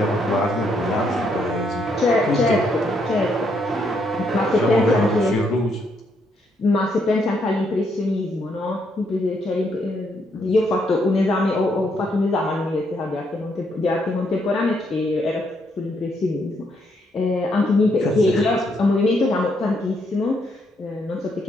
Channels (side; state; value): both; normal; correlation 0.74